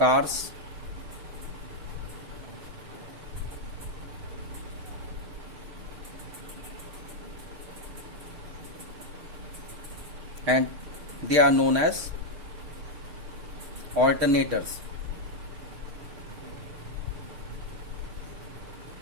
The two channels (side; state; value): left; late; 6.3 ms